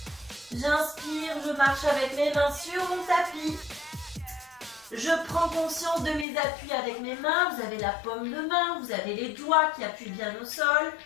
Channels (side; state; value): right; drops out; at 6.2 s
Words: J'inspire, je marche avec mes mains sur mon tapis. Je prends conscience de mes appuis avec mes mains. Vous avez la paume de main, vous avez les doigts qui appuient bien au sol.